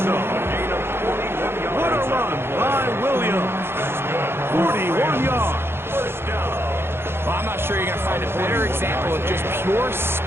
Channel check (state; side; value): late; left; 0.11 ms